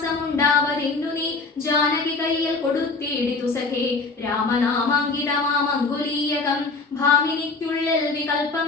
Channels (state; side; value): quieter; right; 4.0 dB